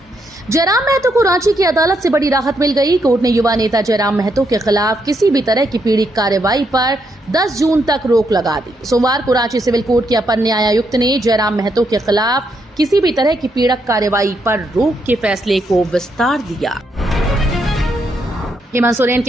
जयराम महतो को रांची की अदालत से बड़ी राहत मिल गई। कोर्ट ने युवा नेता जयराम महतो के खिलाफ किसी भी तरह की पीड़ित कार्रवाई पर 10 जून तक रोक लगा दी। सोमवार को रांची सिविल कोर्ट के अपर न्यायायुक्त ने जयराम महतो के खिलाफ किसी भी तरह की पीड़क कार्रवाई पर रोक के फैसले को विस्तार दिया। हेमंत सोरेन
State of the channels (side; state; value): both; normal; correlation 0.78